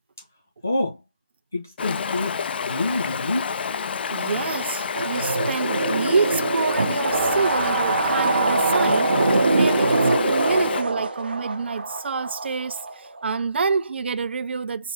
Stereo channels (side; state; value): both; inverted; correlation -0.72